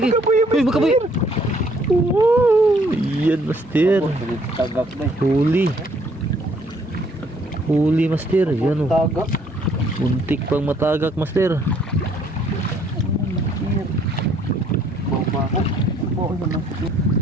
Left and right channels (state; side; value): normal; both; correlation 0.64